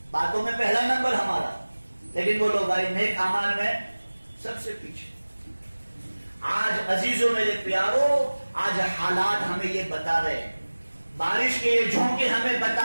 باتوں میں پہلا نمبر ہمارا, لیکن بولو بھائی نیک اعمال میں سب سے پیچھے. آج عزیزوں میرے پیارو, آج حالات ہمیں یہ بتا رہے ہیں, بارش کے یہ جھونکے ہمیں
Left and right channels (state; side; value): inverted; both; correlation -1.00